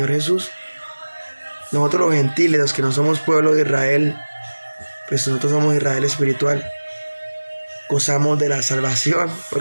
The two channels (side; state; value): both; inverted; correlation -1.00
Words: Jesús, nosotros los gentiles, los que no somos pueblo de Israel, pues nosotros somos Israel espiritual, gozamos de la salvación,